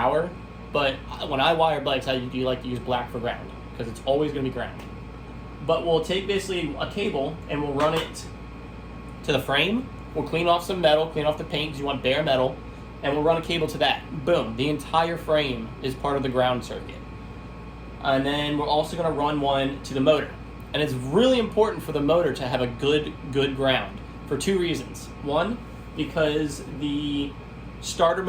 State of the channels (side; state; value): both; identical; correlation 1.00